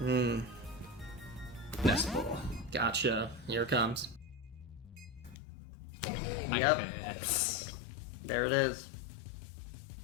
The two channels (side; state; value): right; drops out; at 5.4 s